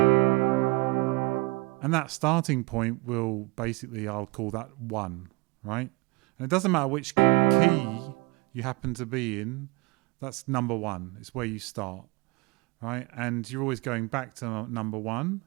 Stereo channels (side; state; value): left; quieter; 25.3 dB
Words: And that starting point will basically, I'll call that 1, right? And it doesn't matter which key you happen to be in, that's number 1. It's where you start, right? And you're always going back to number 1.